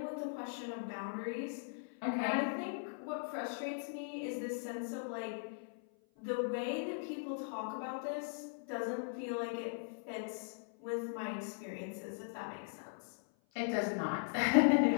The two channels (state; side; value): silent; right; 52 dB below the other